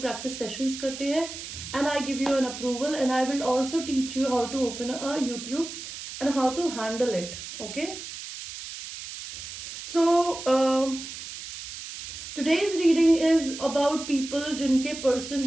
प्रैक्टिस सेशंस करते हैं. And I give you an approval and I will also teach you how to open a YouTube and how to handle it. Okay, so today's reading is about people जिनके पर्सन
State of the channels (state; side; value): noise; right; hiss, 10 dB below the sound